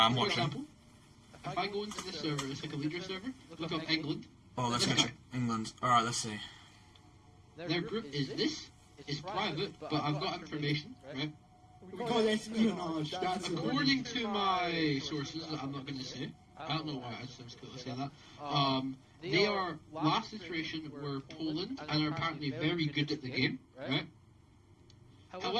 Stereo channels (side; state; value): both; identical; correlation 1.00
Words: For watching. example, if I go into the server, it's like a leader server, look up England. Oh, let's go check England. Alright, let's see. Their group is this. It's private, but I've got information, right? We call espionage. That's According to my sources that I'm not going to say, I don't know why, it sounds cool to say that. They are, last iteration were Poland, and are apparently very good at the game, right?